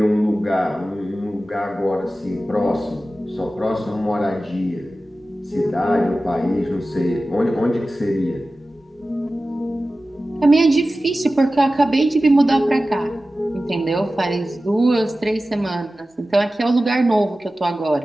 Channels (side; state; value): both; normal; correlation 0.95